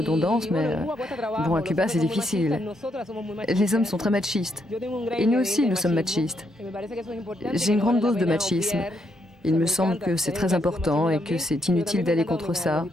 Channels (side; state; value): both; normal; correlation 0.77